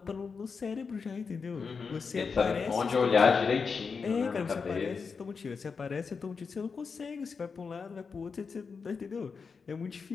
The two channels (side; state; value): right; quieter; 5.3 dB